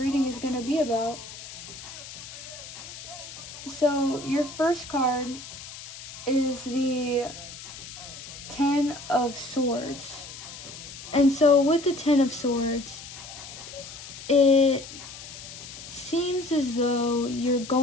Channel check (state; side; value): noise; left; hiss, 13 dB below the sound